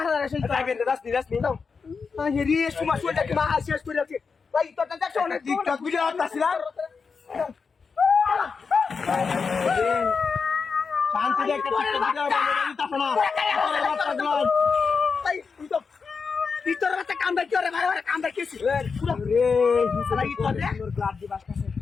আছে। যাইবে যাস নি দাও এই রে সুমা সুটা কি মা শেষ করে আছে। এই তোরটা দেখছো না টিকটক ভিডিও করতেছিলাম শান্তি রে একটা টিকটক ভিডিও বানাই দিতাছ না এই তুই তো ভিতরে একটা কামড়া কি করে মারা কামড়া কিছি। রে শালা এই তোর রে সুন্দর গ্লাস দি বাসতাছে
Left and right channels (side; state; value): right; quieter; 5.2 dB